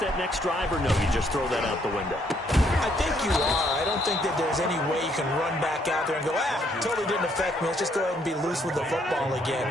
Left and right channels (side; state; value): both; normal; correlation 0.69